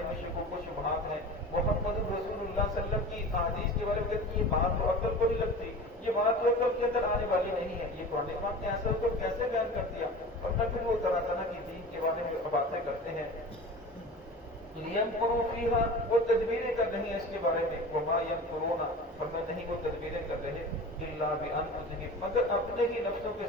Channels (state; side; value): normal; both; correlation 0.35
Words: میں شکوک و شبہات ہیں، محمد رسول اللہ صلی اللہ علیہ وسلم کی احادیث کے بارے میں کہتی یہ بات تو عقل کو نہیں لگتی، یہ بات تو عقل کے اندر آنے والی نہیں ہے، یہ قرآن پاک نے ایسا کو کیسے بیان کر دیا، اور پھر وہ طرح طرح کی دین کے بارے میں باتیں کرتے ہیں۔ لِيَمْكُرُوا فِيهَا، وہ تدبیریں کر رہی ہیں اس کے بارے میں، وَمَا يَمْكُرُونَ، فرمایا نہیں وہ تدبیریں کر رہے إِلَّا بِأَنفُسِهِمْ، مگر اپنے ہی نفسوں